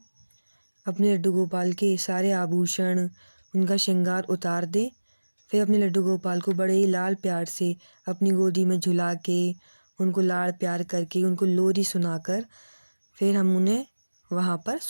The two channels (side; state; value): both; inverted; correlation -1.00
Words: अपने लड्डू गोपाल के सारे आभूषण, उनका श्रृंगार उतार दें। फिर अपने लड्डू गोपाल को बड़े ही लाड प्यार से अपनी गोदी में झुला के, उनको लाड़ प्यार करके, उनको लोरी सुनाकर फिर हम उन्हें वहाँ पर